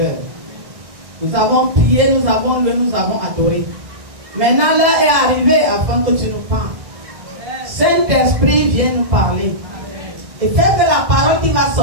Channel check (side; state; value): left; late; 1.6 ms